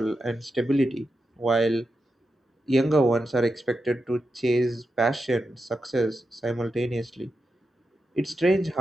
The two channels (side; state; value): both; normal; correlation 0.88